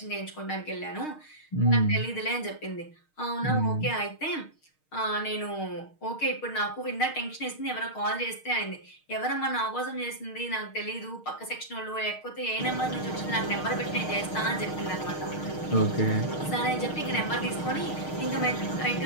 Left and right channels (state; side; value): late; right; 6.5 ms